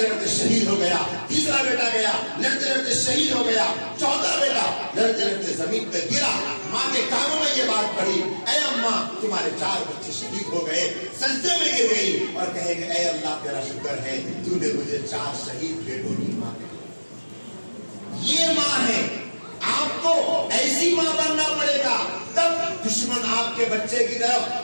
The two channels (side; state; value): both; inverted; correlation -1.00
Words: लड़ते शहीद हो गया। तीसरा बेटा गया, लड़ते लड़ते शहीद हो गया। चौथा बेटा लड़ते लड़ते जमीन पे गिरा। माँ के कानों में ये बात पड़ी, ऐ अम्मा, तुम्हारे 4 बच्चे शहीद हो गए। सजदे में गिर गई और कहेंगे, ऐ अल्लाह तेरा शुक्र है, तूने मुझे 4 शहीद बेटों की माँ दी। ये माँ है। आपको ऐसी माँ बनना पड़ेगा, तब दुश्मन आपके बच्चे की तरफ